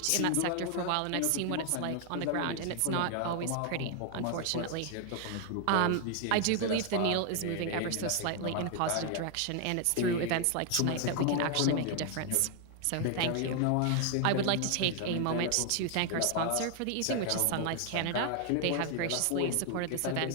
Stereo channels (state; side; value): different; both; correlation 0.00